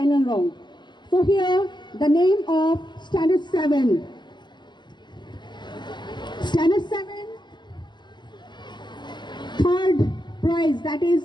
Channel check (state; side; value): late; right; 0.21 ms